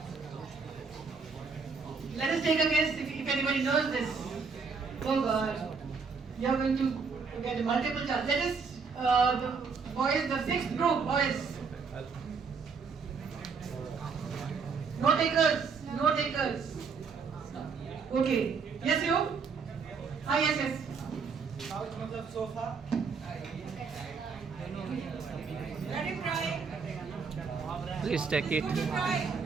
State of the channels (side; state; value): left; quieter; 5.3 dB